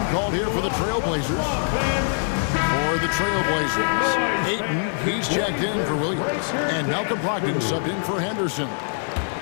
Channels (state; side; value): silent; right; digital silence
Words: called here for the Trailblazers. For the Trailblazers, Ayton, he's checked in for Williams. And Malcolm Brogdon subbed in for Henderson.